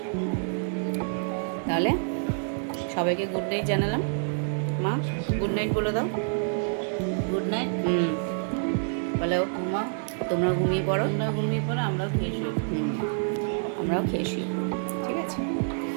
তাহলে। সবাইকে গুড নাইট জানালাম। মা গুড নাইট বলে দাও। Good night. বলো মা, তোমরা ঘুমিয়ে পড়ো। আমরা ঘুমিয়ে পড়ো, আমরাও খেয়ে শুই। আমরাও খেয়ে শুই। ঠিক আছে,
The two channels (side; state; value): left; silent; 60 dB below the other